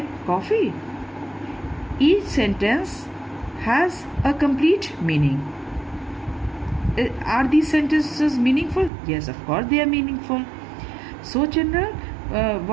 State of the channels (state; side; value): drops out; left; at 8.9 s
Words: coffee? Each sentence has a complete meaning. Are these sentences meaningful? Yes, of course they are meaningful. So, children,